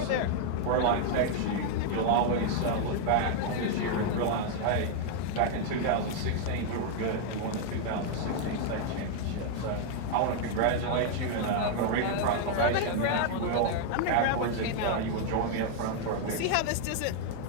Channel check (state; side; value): different; both; correlation 0.00